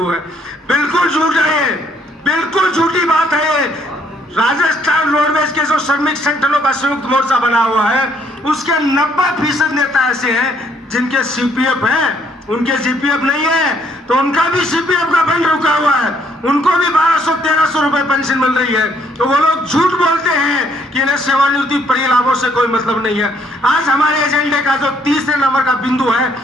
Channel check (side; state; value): both; normal; correlation 0.67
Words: है। बिल्कुल झूठ है, बिल्कुल झूठी बात है। राजस्थान रोडवेज के जो श्रमिक संगठनों का संयुक्त मोर्चा बना हुआ है उसके 90% नेता ऐसे हैं जिनके सीपीएफ है, उनके सीपीएफ नहीं है, तो उनका भी सीपीएफ का फंड रुका हुआ है, उनको भी 1200-1300 रुपए पेंशन मिल रही है। तो वो लोग झूठ बोलते हैं कि इन्हें सेवानिवृत्ति परिलाभों से कोई मतलब नहीं है। आज हमारे एजेंडे का जो 3 नंबर का बिंदु है